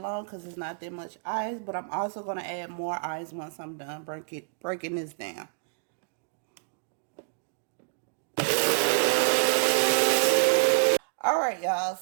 because it's not that much ice. But I'm also going to add more ice once I'm done breaking this down. Alright, y'all.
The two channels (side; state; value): left; silent; digital silence